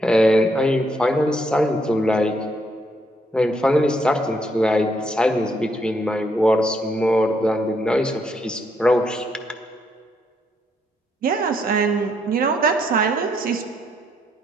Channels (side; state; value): both; normal; correlation 0.74